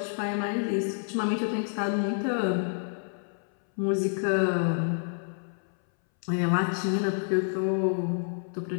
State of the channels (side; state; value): right; silent; 59 dB below the other